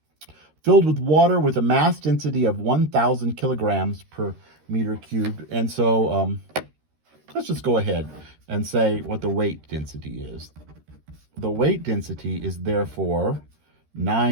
filled with water with a mass density of 1,000 kilograms per meter cubed. And so let's just go ahead and say what the weight density is. The weight density is therefore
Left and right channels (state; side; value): late; left; 13 ms